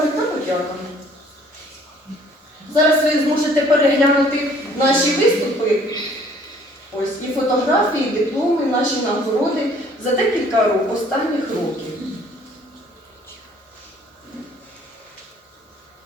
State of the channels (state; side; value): normal; both; correlation 0.57